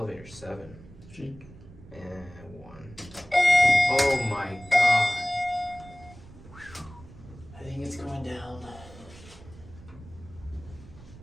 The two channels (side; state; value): right; noise; rumble, 19 dB below the sound